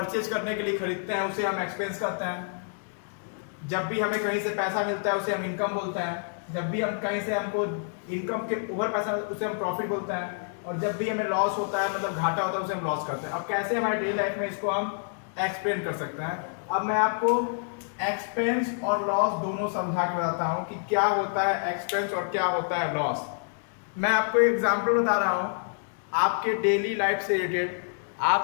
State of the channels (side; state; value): right; silent; digital silence